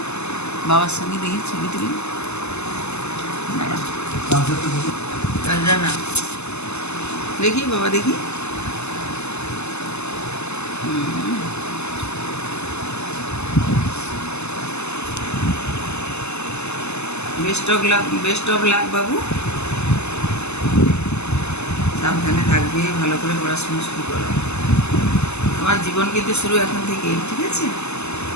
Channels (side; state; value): right; late; 0.81 ms